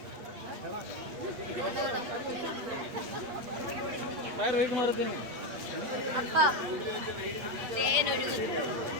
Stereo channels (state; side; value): late; left; 8.4 ms